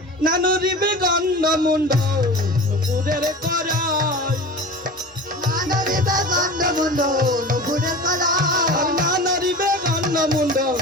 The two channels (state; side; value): normal; both; correlation 0.34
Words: না নড়িবে গন্ড মুন্ড নুপুরের করাই, না নড়িবে গন্ড মুন্ড নুপুরের করাই, না নড়িবে গন্ড মুন্ড